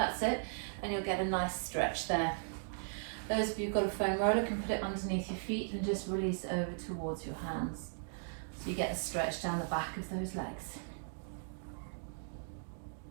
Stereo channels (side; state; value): left; silent; digital silence